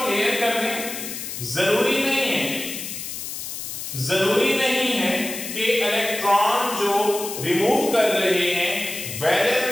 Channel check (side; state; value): left; noise; hiss, 7 dB below the sound